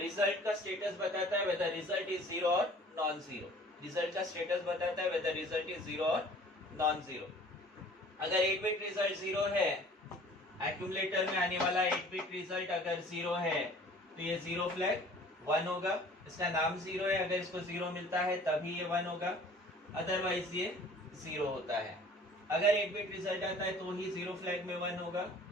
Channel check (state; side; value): normal; both; correlation 0.50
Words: का स्टेटस बताता है वेदर रिजल्ट इज जीरो और नॉन जीरो। रिजल्ट का स्टेटस बताता है वेदर रिजल्ट इज जीरो और नॉन जीरो। अगर 8 बिट रिजल्ट जीरो है, एक्यूमुलेटर में आने वाला 8 बिट रिजल्ट अगर जीरो है, तो ये जीरो फ्लैग 1 होगा। इसका नाम जीरो है, अगर इसको जीरो मिलता है तभी ये 1 होगा, अदरवाइज ये जीरो होता है। अगर 8 बिट रिजल्ट आता है तो ही जीरो फ्लैग में 1 होगा,